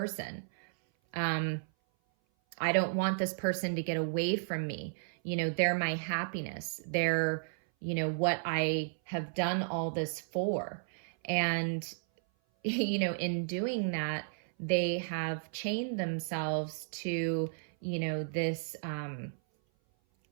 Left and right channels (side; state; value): left; silent; 55 dB below the other